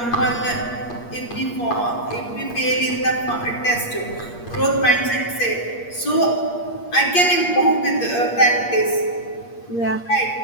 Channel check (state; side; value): late; right; 8.5 ms